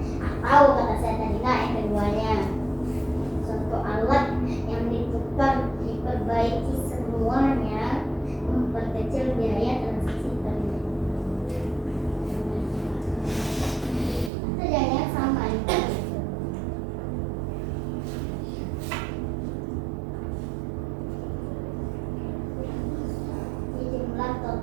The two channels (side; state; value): left; drops out; at 14.3 s